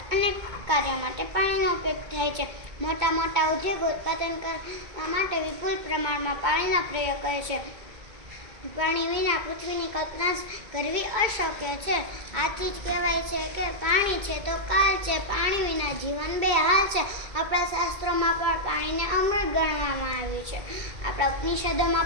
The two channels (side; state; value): left; late; 2.3 ms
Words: અનેક કાર્યો માટે પાણીનો ઉપયોગ થાય છે. મોટા મોટા ઉદ્યોગો ઉત્પાદન કરવા માટે વિપુલ પ્રમાણમાં પાણીનો પ્રયોગ કરે છે. પાણી વિના પૃથ્વીની કલ્પના કરવી અશક્ય છે. આથી જ કહેવાય છે કે પાણી છે તો કાલ છે. પાણી વિના જીવન બેહાલ છે. આપણા શાસ્ત્રોમાં પણ પાણીને અમૃત ગણવામાં આવ્યું છે. આપણા ઉપનિષદોમાં